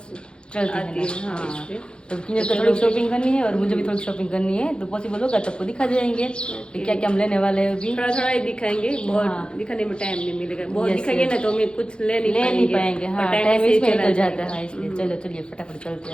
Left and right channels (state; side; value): late; right; 0.052 ms